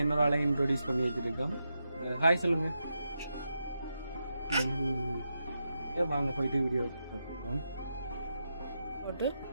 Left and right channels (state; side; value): inverted; both; correlation -0.86